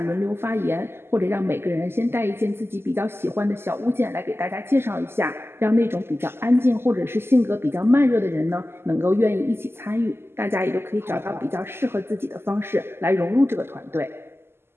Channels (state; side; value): late; left; 0.12 ms